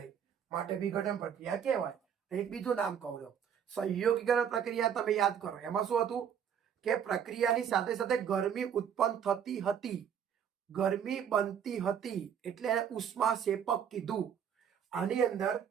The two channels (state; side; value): quieter; left; 8.3 dB